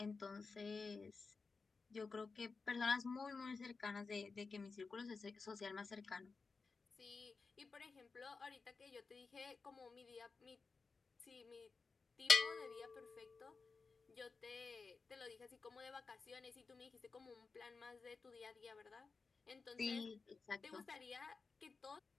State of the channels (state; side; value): quieter; right; 4.4 dB